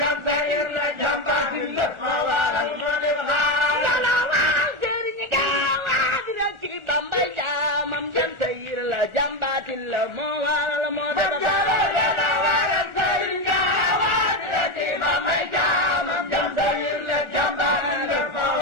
sayir la jam baatin la moo waral moo def xaar sëriñ gaawaan rekki Bambay jaamam jam sayir la jam baatin la moo waral moo def xaar sëriñ gaawaan rekki Bambay jaamam jam sayir la jam baatin la moo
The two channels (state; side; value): late; left; 1.4 ms